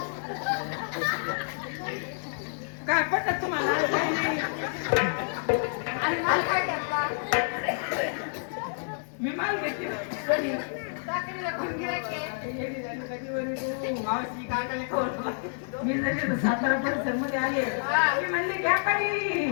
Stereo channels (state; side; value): silent; right; 59 dB below the other